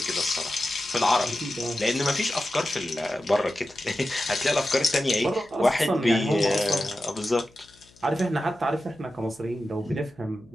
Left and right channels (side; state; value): left; noise; hum, 28 dB below the sound